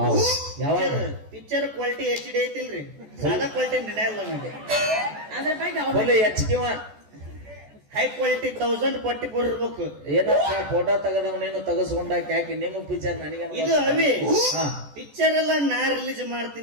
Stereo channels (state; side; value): late; left; 14 ms